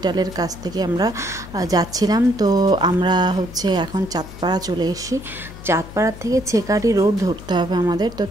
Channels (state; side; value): noise; left; hum, 15 dB below the sound